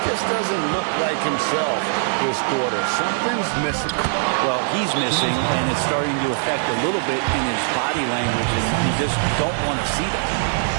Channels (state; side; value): silent; left; digital silence